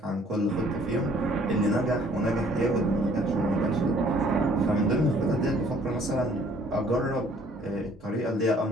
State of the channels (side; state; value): both; normal; correlation 0.59